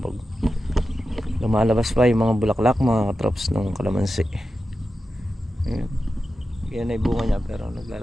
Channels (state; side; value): normal; both; correlation 0.91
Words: Lumalabas pa yung mga bulaklak, mga katrops ng kalamansi. Yan ay bunga niya, pero